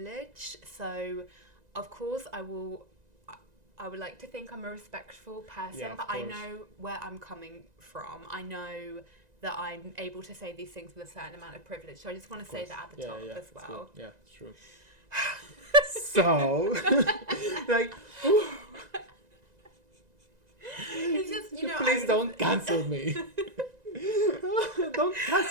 so of course I would like to think I'm a respectful person, but I know where I'm coming from. I know that I'm able to say these things with a certain amount of privilege, so I just want to say that at the top as well. Yeah, it's true. So, like, it's just, you know, please don't cancel me. Don't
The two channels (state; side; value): late; left; 1.9 ms